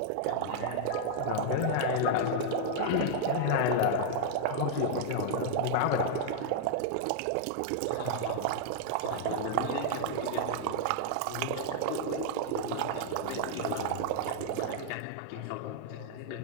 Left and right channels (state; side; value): different; both; correlation 0.00